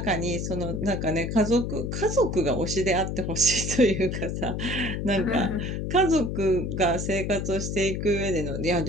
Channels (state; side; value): noise; left; hum, 3 dB below the sound